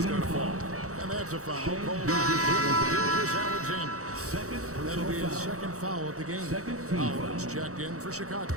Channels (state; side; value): late; left; 0.65 ms